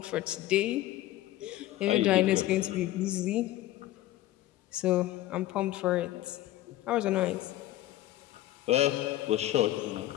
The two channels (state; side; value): quieter; right; 15.0 dB